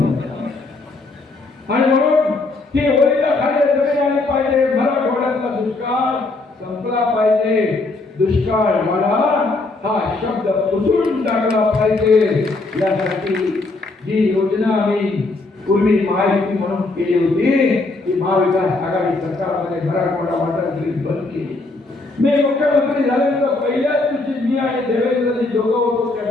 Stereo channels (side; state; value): right; quieter; 3.3 dB